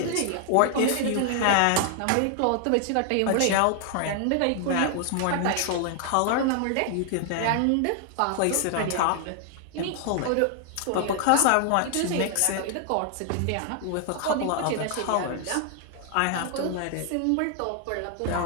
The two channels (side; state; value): both; different; correlation 0.00